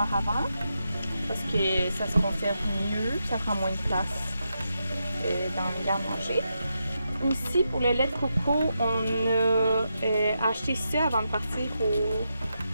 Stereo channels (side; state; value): both; inverted; correlation -0.85